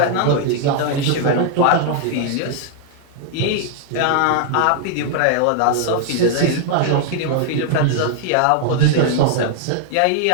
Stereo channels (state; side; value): different; both; correlation -0.01